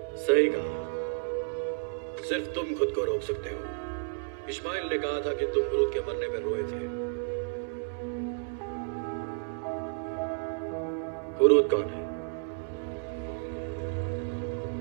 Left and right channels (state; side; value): silent; left; digital silence